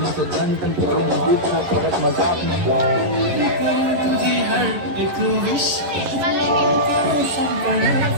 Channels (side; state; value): left; late; 11 ms